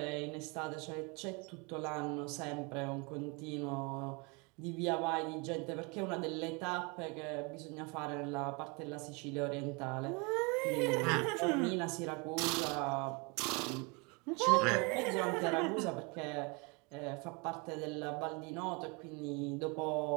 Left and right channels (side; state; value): left; quieter; 30.2 dB